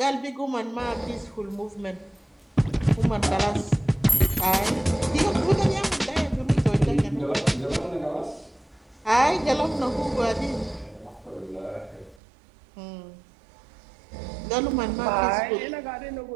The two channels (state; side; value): drops out; left; at 12.2 s